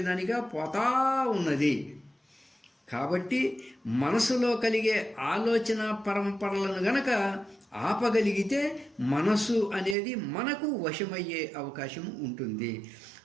పోతా ఉన్నది. కాబట్టి మనసులో కలిగే ఆలోచన పరంపరలను గనక ఆపగలిగితే మనసు అనేది మనకు వశమయ్యే అవకాశం ఉంటుంది.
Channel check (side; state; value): left; drops out; at 10.0 s